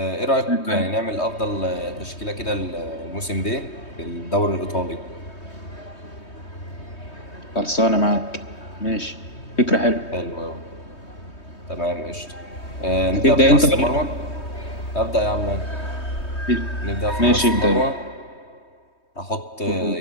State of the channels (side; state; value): right; late; 3.2 ms